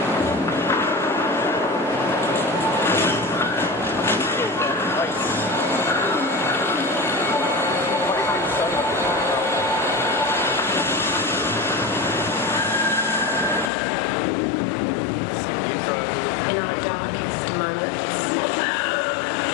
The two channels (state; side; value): drops out; right; at 13.7 s